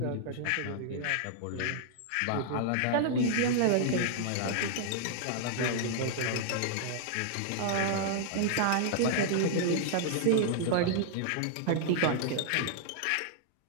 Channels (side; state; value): both; different; correlation -0.01